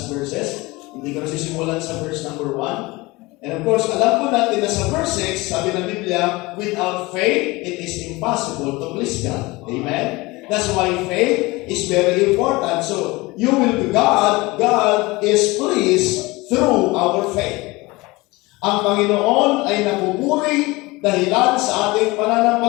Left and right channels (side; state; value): right; quieter; 22.5 dB